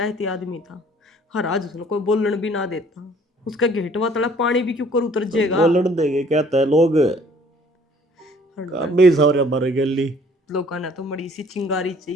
आदमी था, हर आज उसने कोई बोलन भी ना देता, उसका घेटवा तला पानी भी क्यों कर उतर जाएगा। बोलन देंगे कहता है लोग, काम भी सारे मर गली। लोगों ने तो बड़ी सी चिंगारी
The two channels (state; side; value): normal; both; correlation 0.57